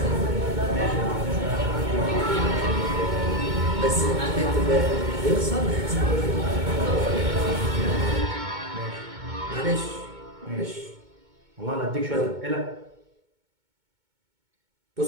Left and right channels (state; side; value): late; left; 2.2 ms